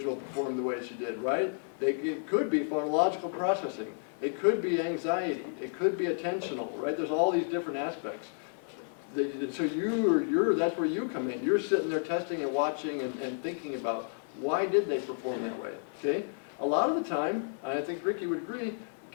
performed the way she did, right? It could be phonological processing. It could be anxiety. It could be attentional, right? There's all these different aspects. So that's where you come in. You're sitting there testing and watching and thinking about why did they perform that way, okay? A lot of the time, and I think Ricky would agree,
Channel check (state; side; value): silent; right; digital silence